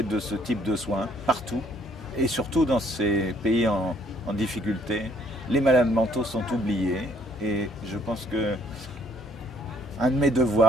de ce type de soins, partout. Et surtout dans ces pays en difficulté, les malades mentaux sont oubliés. Et je pense que un de mes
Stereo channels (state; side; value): normal; both; correlation 0.64